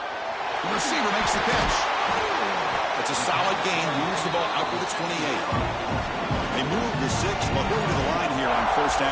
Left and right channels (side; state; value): both; identical; correlation 1.00